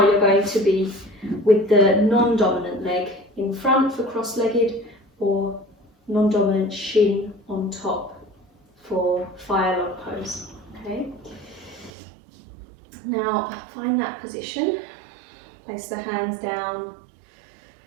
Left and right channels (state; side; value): drops out; left; at 11.9 s